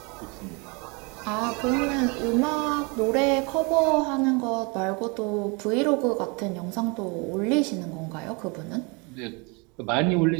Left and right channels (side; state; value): left; quieter; 30.4 dB